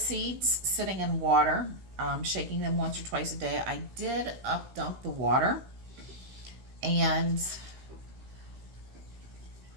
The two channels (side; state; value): left; late; 16 ms